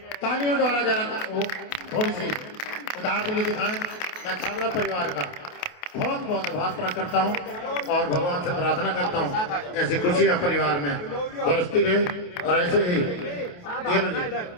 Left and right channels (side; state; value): right; late; 28 ms